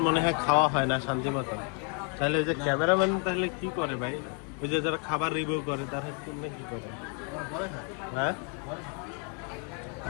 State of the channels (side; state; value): right; quieter; 39.0 dB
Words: মনে হয় খাওয়া হয় না শান্তি মতো। তাহলে ওই যে ক্যামেরাম্যান তাহলে কি করে ভাই? ওই যে যারা খাবার রিভিউ করে তারা কি করে? হ্যাঁ